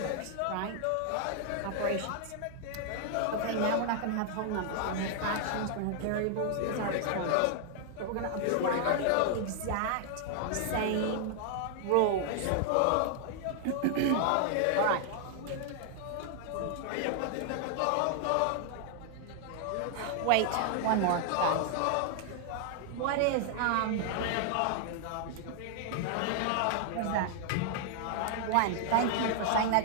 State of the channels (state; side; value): different; both; correlation 0.00